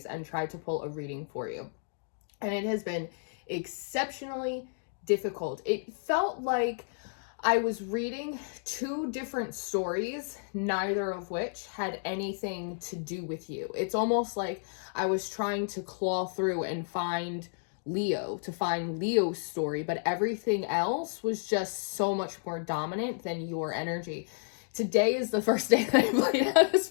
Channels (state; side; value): silent; right; digital silence